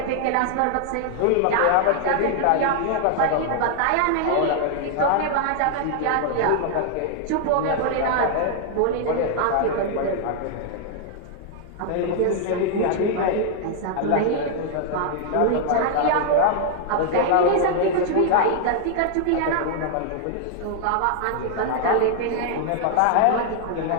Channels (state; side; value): different; both; correlation 0.00